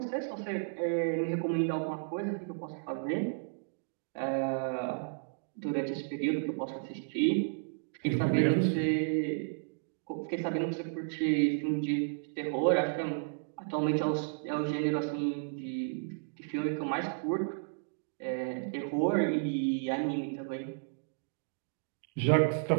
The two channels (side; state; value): left; silent; digital silence